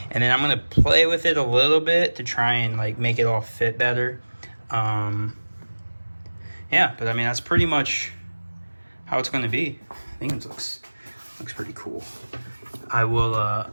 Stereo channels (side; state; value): both; inverted; correlation -1.00